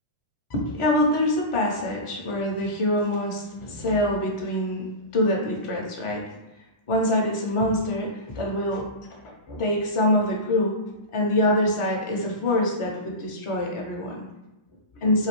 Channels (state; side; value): late; right; 1.4 ms